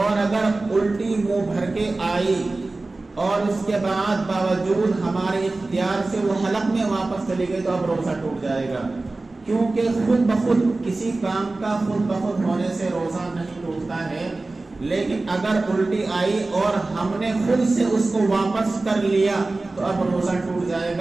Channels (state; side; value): quieter; left; 3.2 dB